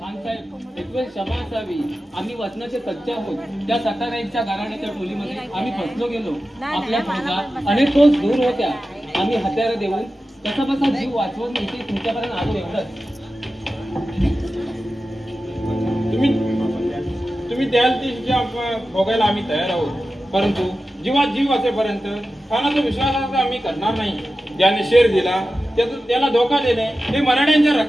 एक वेळ क्षमा असावी. आम्ही वचनाचे सच्चे आहोत. त्या सत्तानाईकच्या घराण्याच्या टोलीमध्ये आम्ही फसलो गेलो. आपल्या फौजा अनेक रोज दूर होत्या. आम्ही हत्यारं देऊन कसा बसा जीव वाचवून इथे तुमच्यापर्यंत आलो. एवढंच. तुम्ही द्याल ती शिक्षा भोगायला आम्ही तयार आहोत, परंतु जीवात जीव असेपर्यंत खानाचा विश्वासार्थ आम्ही करणार नाही. ज्याने शेर दिला त्याला धोका देणे हे मराठ्यांच्या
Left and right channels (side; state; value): both; normal; correlation 0.93